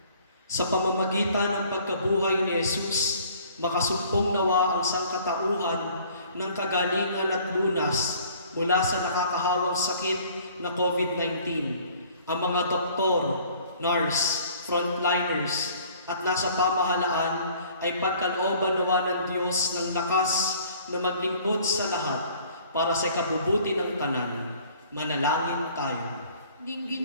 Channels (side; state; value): both; inverted; correlation -0.54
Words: Sa pamamagitan ng pagkabuhay ni Jesus, makasumpong nawa ang sangkatauhan ng kagalingan at lunas mula sa nakakahawang sakit na COVID-19. Ang mga doktor, nurse, frontliners, at nasa pamahalaan ay pagkalooban nawa ng Diyos ng lakas na maglingkod sa lahat para sa kabubuti ng tanan. Manalangin tayo.